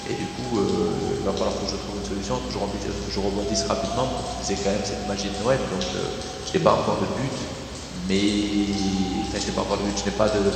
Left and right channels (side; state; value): both; identical; correlation 1.00